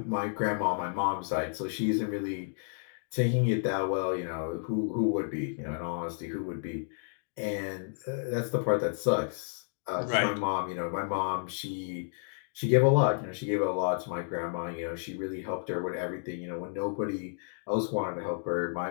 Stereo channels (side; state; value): right; silent; digital silence